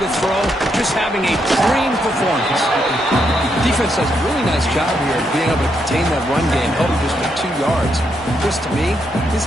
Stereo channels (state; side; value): normal; both; correlation 0.79